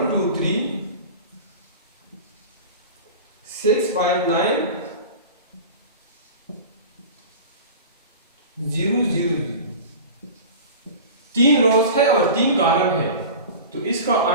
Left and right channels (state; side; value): inverted; both; correlation -0.34